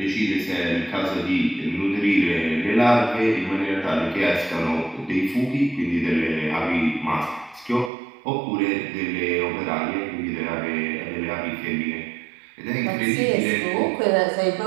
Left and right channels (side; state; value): left; drops out; at 7.9 s